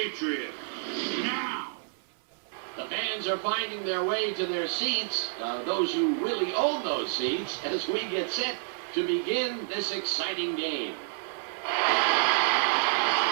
Now. The fans are finding their way to their seats, those who really own those seats, as we get set to begin this exciting game.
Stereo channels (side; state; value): left; silent; 59 dB below the other